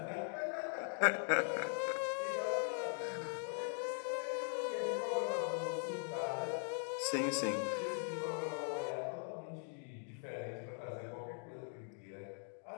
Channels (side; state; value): right; silent; 50 dB below the other